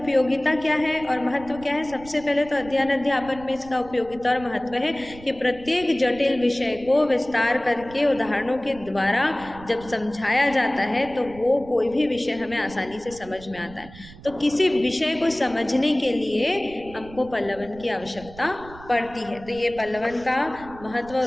क्या है और महत्व क्या है? सबसे पहले तो अध्ययन अध्यापन में इसका उपयोगिता और महत्व है कि प्रत्येक जटिल विषय को विस्तार करके उदाहरणों के द्वारा जब समझाया जाता है तो वो कोई भी विषय हमें आसानी से समझ में आता है। तो किसी विषय को समझने के लिए हमको पल्लवन की आवश्यकता पड़ती है। तो ये पल्लवन का महत्व और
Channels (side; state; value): right; noise; rumble, 18 dB below the sound